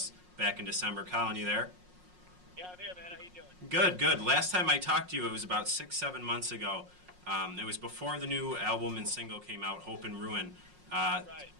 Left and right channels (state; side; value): late; left; 5.5 ms